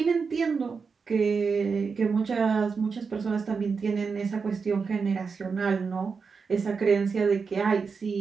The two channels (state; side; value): quieter; left; 5.2 dB